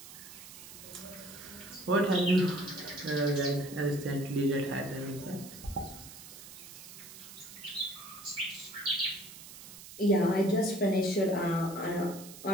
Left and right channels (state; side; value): noise; right; hiss, 15 dB below the sound